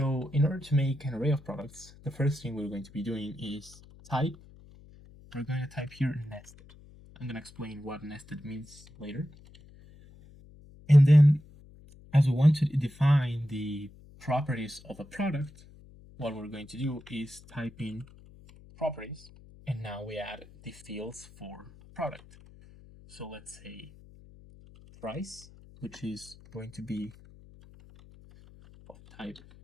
in order to make an array of products, the first thing we're going to be doing is type. We're going to type here nested. I'm going to explain what nested means later. And then, as we want to define the properties of a product, what we're going to do is type in properties, and now we add the fields for product. So let's say price, which is going to be of type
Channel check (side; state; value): left; noise; hum, 22 dB below the sound